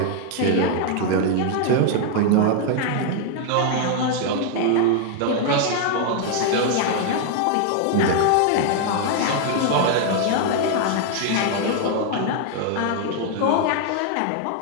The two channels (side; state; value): both; different; correlation 0.00